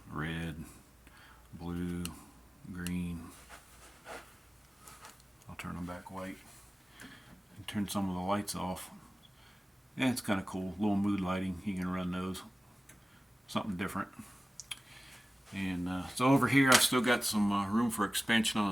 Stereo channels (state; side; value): normal; both; correlation 0.96